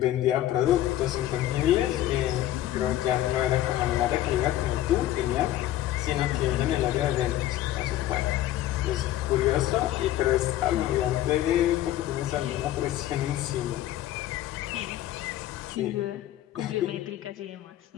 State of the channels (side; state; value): right; quieter; 13.6 dB